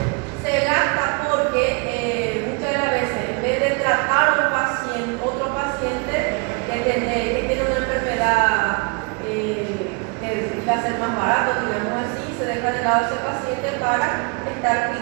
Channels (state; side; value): quieter; left; 33.7 dB